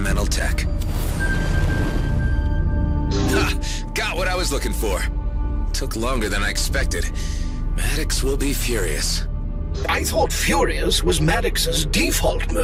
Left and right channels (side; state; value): both; identical; correlation 1.00